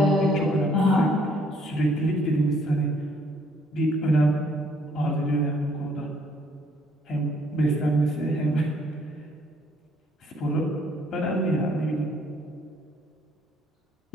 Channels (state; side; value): normal; both; correlation 0.65